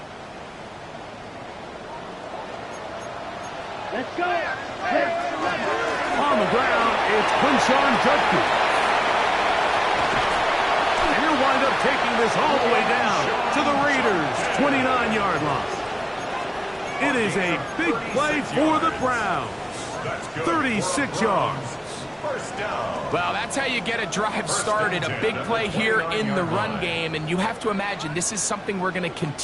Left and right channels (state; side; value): identical; both; correlation 1.00